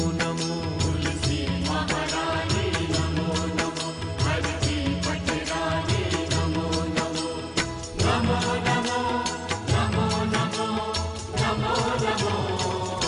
नमो। तुलसी महारानी नमो नमो, हर की पटरानी नमो नमो। नमो नमो नमो नमो नमो नमो।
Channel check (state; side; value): identical; both; correlation 1.00